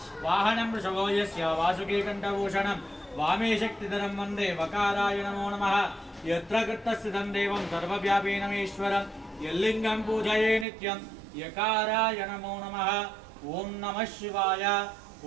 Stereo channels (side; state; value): left; drops out; at 10.7 s